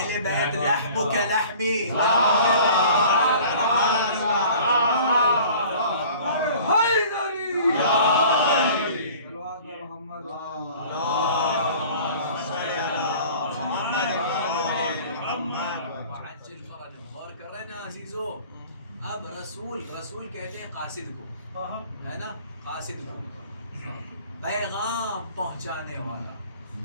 بیت لحم کا لحمی. غور کر رہے ہیں نا عزیزو. اب رسول کہتے ہیں قاصد کو، ہے نا، قاصد کو، پیغام پہنچانے والا،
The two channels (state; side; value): inverted; both; correlation -0.47